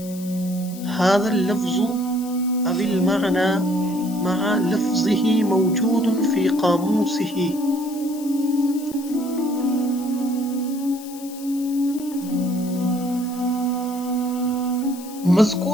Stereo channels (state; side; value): noise; left; hiss, 17 dB below the sound